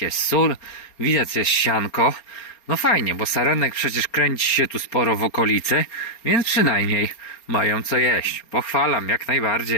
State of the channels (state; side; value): late; right; 4.3 ms